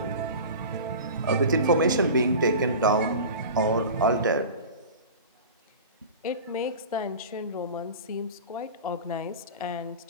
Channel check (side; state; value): both; inverted; correlation -0.34